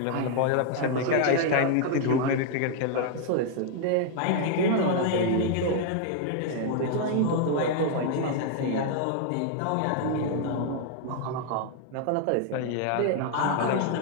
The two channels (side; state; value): both; different; correlation 0.00